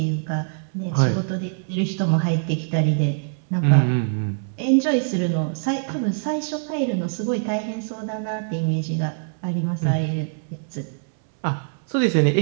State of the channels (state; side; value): silent; left; 63 dB below the other